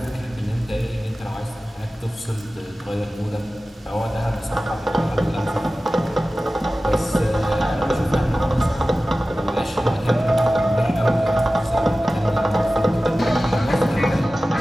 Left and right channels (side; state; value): both; normal; correlation 0.96